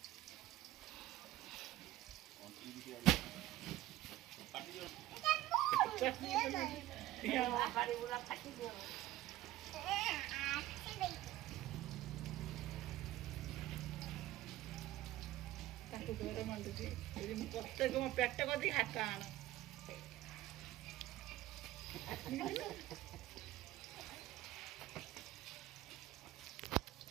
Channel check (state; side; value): quieter; left; 15.5 dB